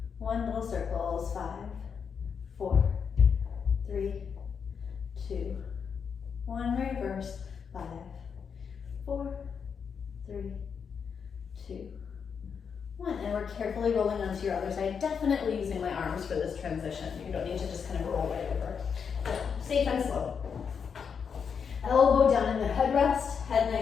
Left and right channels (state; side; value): quieter; right; 6.5 dB